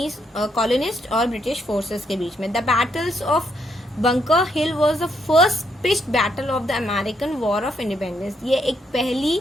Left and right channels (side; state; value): both; normal; correlation 0.75